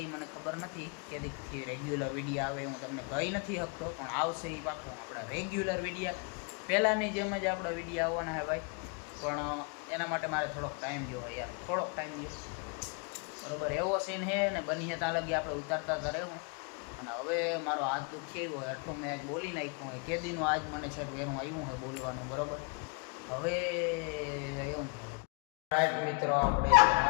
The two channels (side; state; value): right; quieter; 35.4 dB